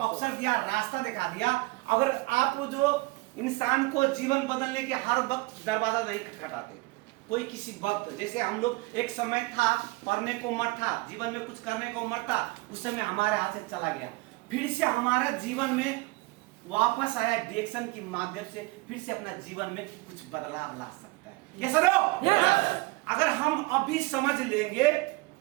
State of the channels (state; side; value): quieter; left; 23.9 dB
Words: दिया, रास्ता दिखा दिया। अगर आप जो इंसान को जीवन बदलने के हर वक्त दरवाजा नहीं खटखटाते, कोई किसी वक्त, जैसे हम लोग एक समय था पढ़ने को उम्र था, जीवन में कुछ करने को उम्र था, उस समय हमारे हाथ से चला गया, फिर से हमारा जीवन में वापस आया, डिएक्शन के माध्यम से फिर से अपना जीवन में कुछ बदलाव ला सकता है। ये सरो अगर हम अभी समझ लेंगे